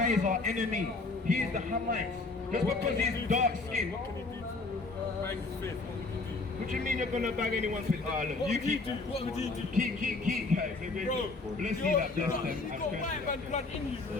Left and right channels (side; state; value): right; quieter; 3.6 dB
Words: is our enemy. He is the Hamites. Just because he's dark skinned. this, what would you do? What do you mean you're gonna bag anyone's with? Oh, look, What you would you keep. do? What would you do? Keep, guys. Bro, Let's see that bless them. you got white man blood in you,